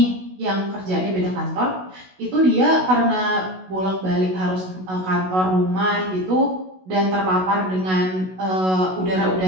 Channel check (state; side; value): late; left; 16 ms